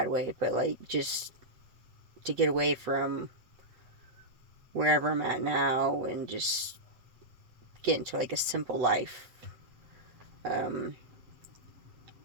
way, but like just to get away from wherever I'm at now and just get into like a simple life. Um,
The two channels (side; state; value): left; late; 7.7 ms